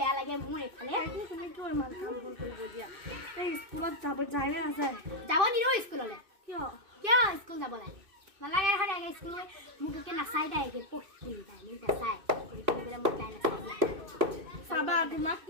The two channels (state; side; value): late; left; 2.6 ms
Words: লাগে মোৰ এইফালে তুমি কিয় ইমান কাম ভুল কৰিব দিয়া এই স্কুলত যায় নে নাযায় যাব নিদিওঁ স্কুললৈ কিয় স্কুল যাব লাগে নালাগে এখন স্কুল মোক একে নাচাই তাই একে পঢ়ি তাই মোক নাচাই পঢ়ি পেলাই মোক তাই নাচাই চাবা তোমাক